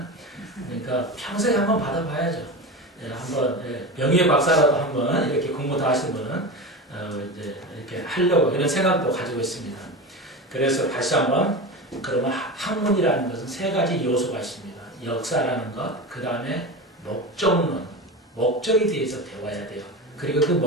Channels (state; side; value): normal; both; correlation 0.26